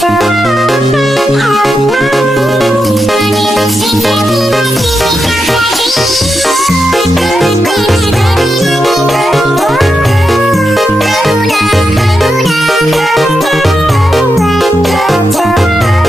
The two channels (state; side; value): normal; both; correlation 0.86